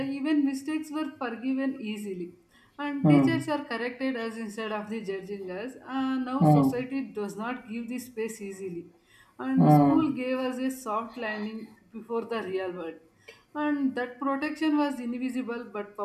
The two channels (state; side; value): identical; both; correlation 1.00